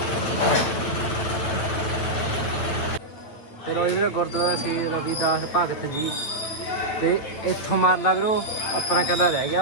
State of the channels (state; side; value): late; right; 9.0 ms